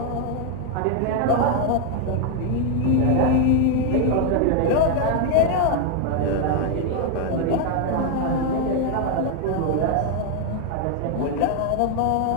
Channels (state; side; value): different; both; correlation 0.01